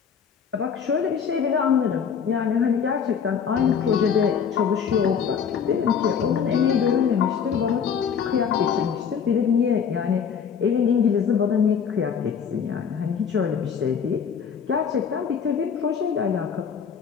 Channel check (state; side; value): quieter; right; 7.0 dB